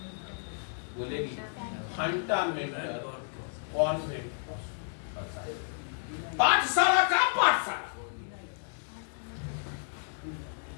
बोलेगी फंडामेंटल कॉन्वेंट पाठशाला का पाठशाला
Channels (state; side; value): silent; right; digital silence